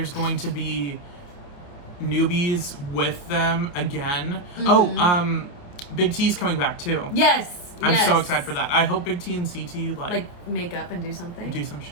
going to be newbies with them again. Mm-hmm. Big T's coming back too. Yes. I'm so excited for that. I hope Big T and CT like make up and do something. Do some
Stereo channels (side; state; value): right; late; 28 ms